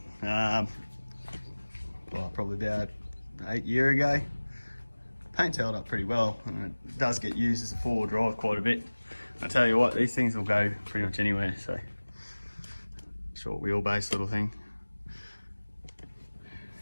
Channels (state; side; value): inverted; both; correlation -1.00